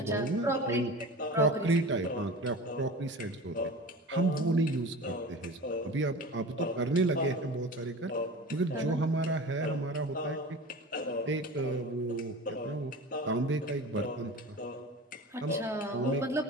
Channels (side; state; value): both; normal; correlation 0.35